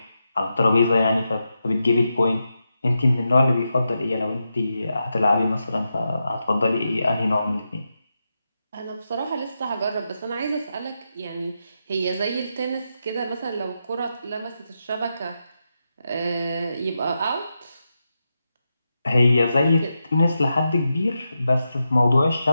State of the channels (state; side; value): inverted; both; correlation -0.87